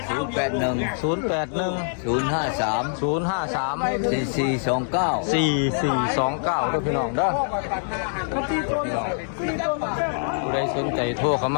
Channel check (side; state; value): right; silent; digital silence